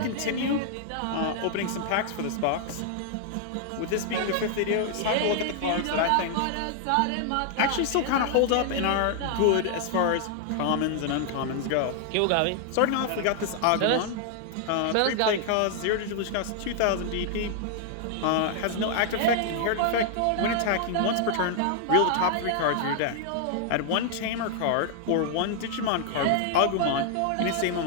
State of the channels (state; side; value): different; both; correlation 0.00